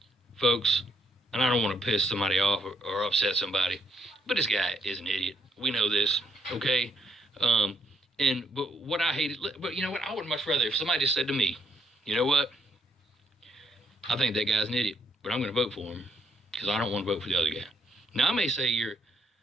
folks, and I don't want to piss somebody off or upset somebody, but this guy is an idiot. We know this, okay? But what I hated, but you know what? I would much rather if somebody just said to me, you know what? I think that guy's an idiot, but I'm going to vote for him because I don't want to vote for the other guy. Now, I may say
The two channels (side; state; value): both; normal; correlation 0.73